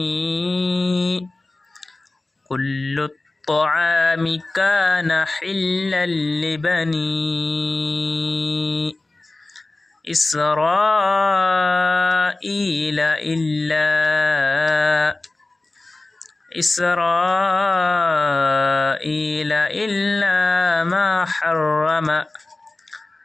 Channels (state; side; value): quieter; right; 3.0 dB